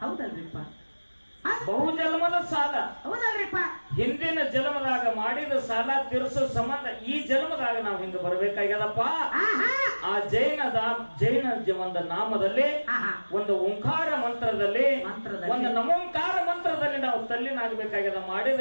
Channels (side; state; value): both; inverted; correlation -1.00